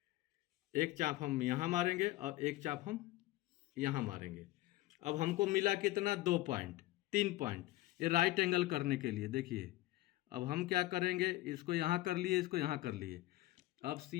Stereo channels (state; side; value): quieter; right; 17.4 dB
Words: एक चाप हम यहाँ मारेंगे और एक चाप हम यहाँ मारेंगे। अब हमको मिला कितना, 2 पॉइंट, 3 पॉइंट, ये राइट एंगल करने के लिए। देखिए अब हम क्या करेंगे, इसको यहाँ कर लिए, इसको यहाँ कर लिए, अब